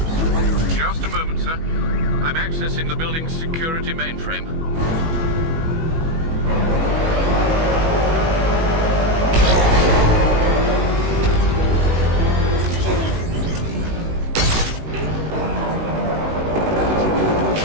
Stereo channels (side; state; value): left; late; 18 ms